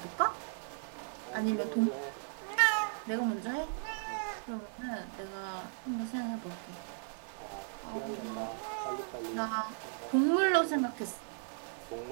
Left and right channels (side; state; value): left; silent; digital silence